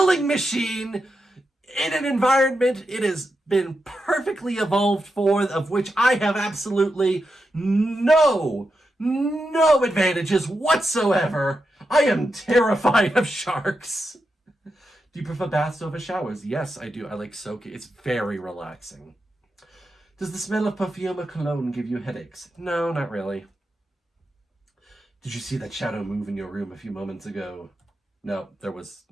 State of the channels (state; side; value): normal; both; correlation 0.87